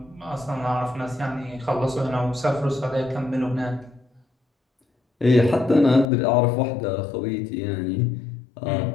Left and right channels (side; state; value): right; drops out; at 6.1 s